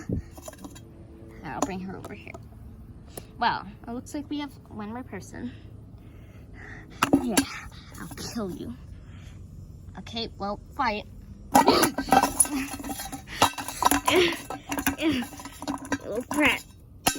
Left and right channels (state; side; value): identical; both; correlation 1.00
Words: I'll bring her over here. Well, it looks like we have one more person. Yeah, I'll kill you. Okay, well, fight. Little brat.